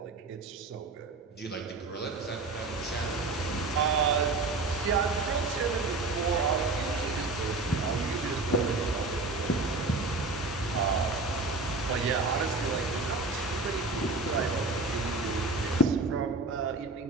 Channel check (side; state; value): left; quieter; 3.4 dB